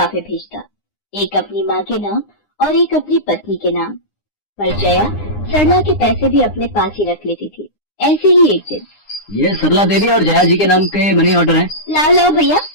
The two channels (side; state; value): right; late; 9.8 ms